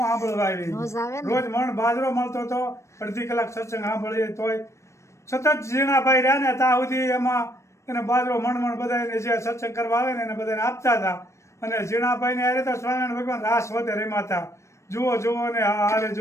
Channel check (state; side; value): late; right; 0.14 ms